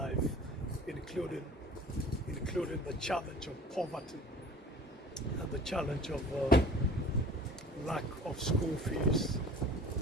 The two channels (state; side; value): normal; both; correlation 0.45